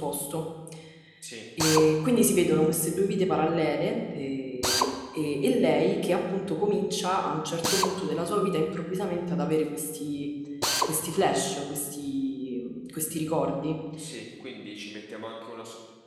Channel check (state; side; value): identical; both; correlation 1.00